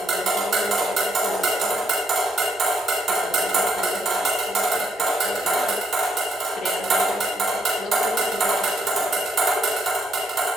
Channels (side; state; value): both; normal; correlation 0.76